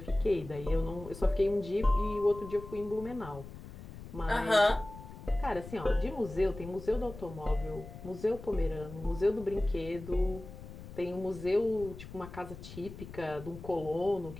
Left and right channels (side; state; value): left; noise; rumble, 13 dB below the sound